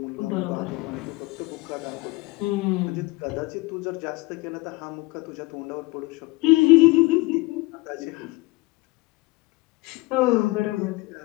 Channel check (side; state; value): right; quieter; 22.5 dB